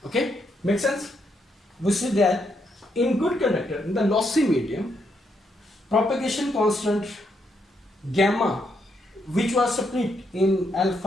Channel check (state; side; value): normal; both; correlation 0.77